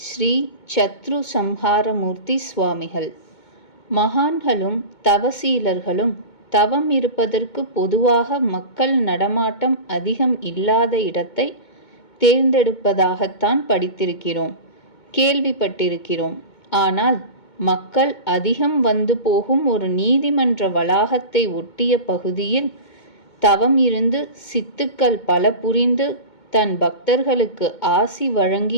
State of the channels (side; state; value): right; late; 2.2 ms